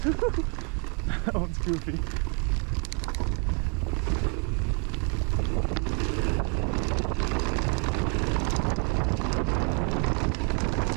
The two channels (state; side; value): quieter; left; 37.8 dB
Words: That one's goofy.